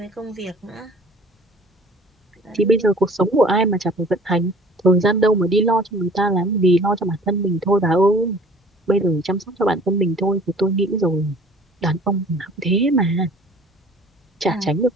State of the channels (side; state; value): both; normal; correlation 0.50